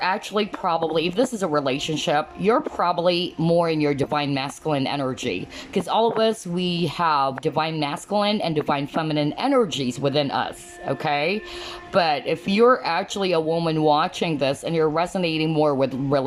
probably, if this is a relationship, you're probably more in your divine masculine energy, because all of us, we have divine masculine and divine feminine energies within us, okay? But if you're actually a woman watching this and you're resonating more with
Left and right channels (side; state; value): both; identical; correlation 1.00